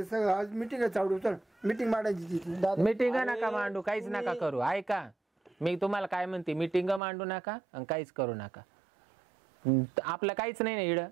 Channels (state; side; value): drops out; left; at 7.0 s